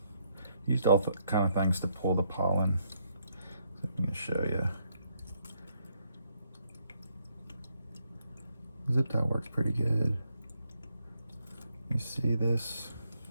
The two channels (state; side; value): inverted; both; correlation -0.74